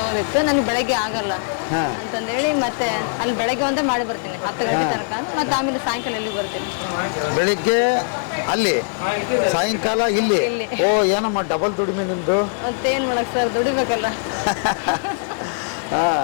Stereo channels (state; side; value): silent; right; digital silence